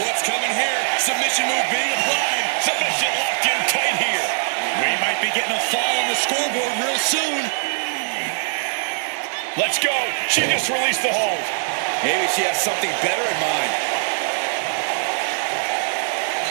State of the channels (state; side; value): silent; left; digital silence